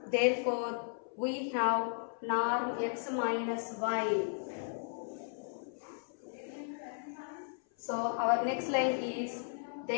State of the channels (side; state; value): right; silent; 54 dB below the other